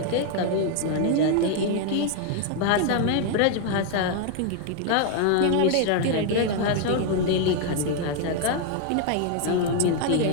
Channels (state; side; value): different; both; correlation 0.00